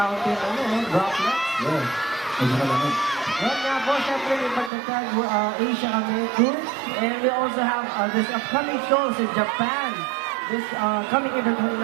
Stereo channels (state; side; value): drops out; left; at 4.7 s